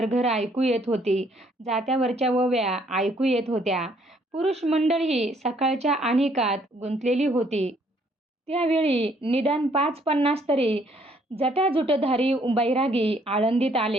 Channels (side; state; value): both; normal; correlation 0.65